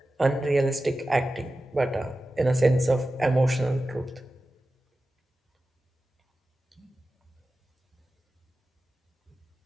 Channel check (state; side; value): normal; both; correlation 0.94